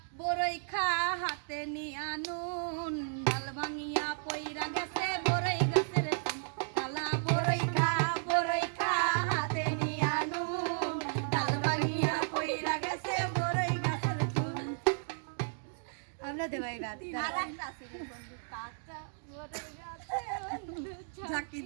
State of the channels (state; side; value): silent; left; digital silence